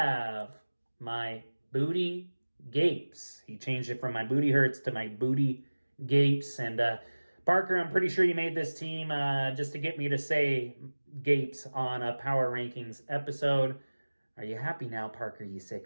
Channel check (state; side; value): inverted; both; correlation -1.00